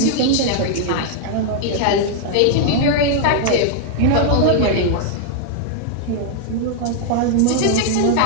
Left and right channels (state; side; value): different; both; correlation 0.00